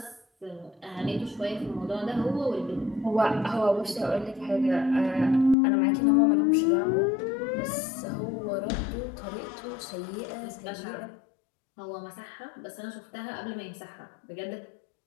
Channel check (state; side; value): drops out; right; at 5.6 s